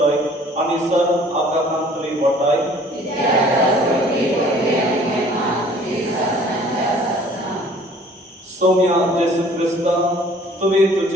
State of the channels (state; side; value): normal; both; correlation 0.53